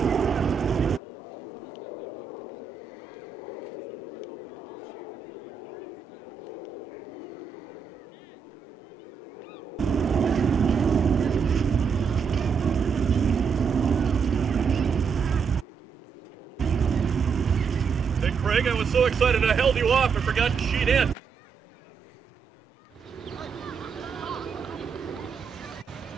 Hey Craig, I was so excited I held you off, I forgot to sheet in.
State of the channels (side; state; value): left; quieter; 6.3 dB